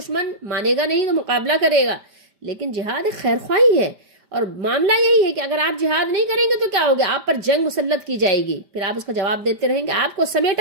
مانے گا نہیں تو مقابلہ کرے گا، لیکن جہاد ایک خیر خواہی ہے۔ اور معاملہ یہی ہے کہ اگر آپ جہاد نہیں کریں گے تو کیا ہوگا؟ آپ پر جنگ مسلط کی جائے گی، پھر آپ اس کا جواب دیتے رہیں گے، آپ کو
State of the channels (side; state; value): left; late; 5.1 ms